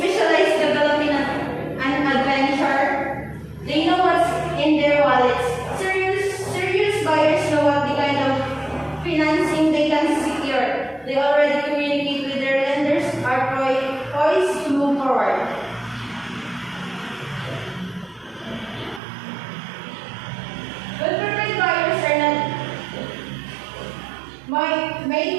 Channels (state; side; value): drops out; left; at 19.0 s